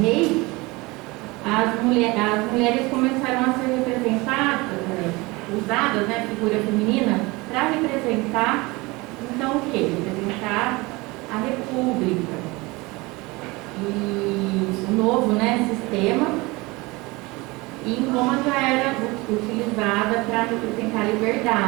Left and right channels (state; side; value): quieter; left; 23.5 dB